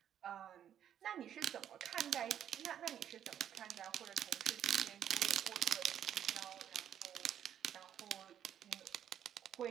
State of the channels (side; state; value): left; quieter; 9.9 dB